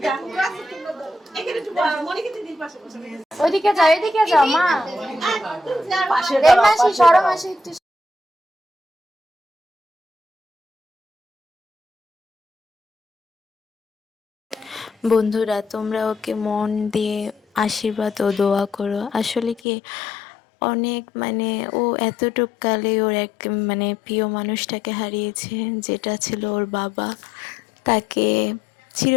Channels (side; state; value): right; drops out; at 19.6 s